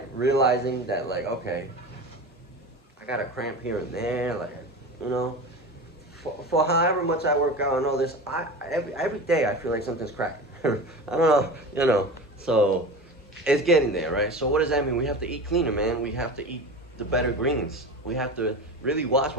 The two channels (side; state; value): both; normal; correlation 0.30